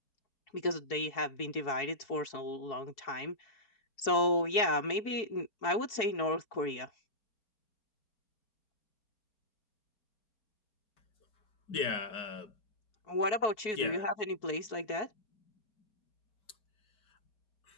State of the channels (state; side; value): late; right; 4.7 ms